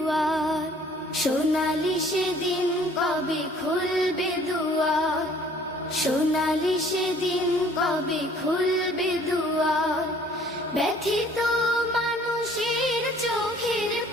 সোনালি সেদিন কবে খুলবে দুয়ার, সোনালি সেদিন কবে খুলবে দুয়ার। ব্যথিত মানুষের চোখের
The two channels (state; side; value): normal; both; correlation 0.56